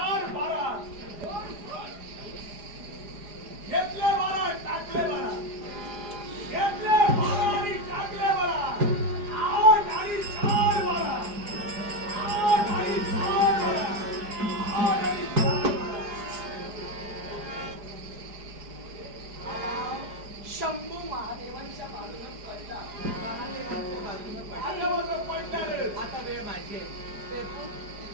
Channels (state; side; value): late; left; 4.9 ms